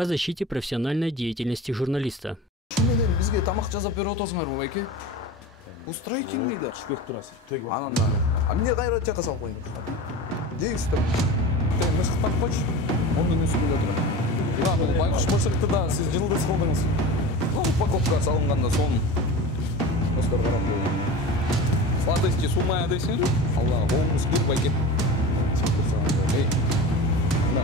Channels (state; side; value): normal; both; correlation 0.32